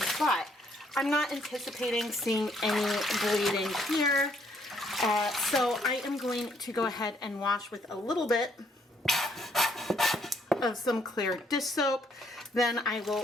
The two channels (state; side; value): normal; both; correlation 0.68